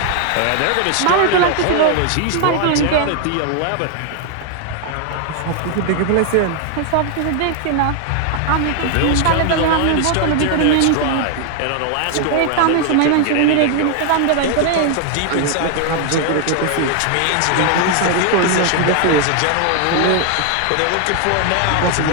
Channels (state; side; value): different; both; correlation 0.00